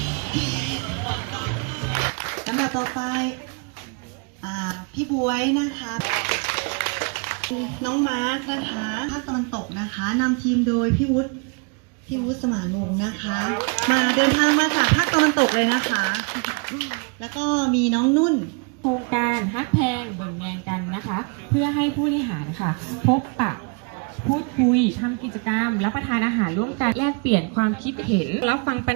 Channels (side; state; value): left; quieter; 34.9 dB